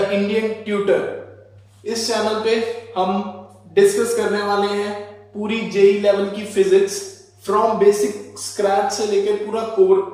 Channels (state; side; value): identical; both; correlation 1.00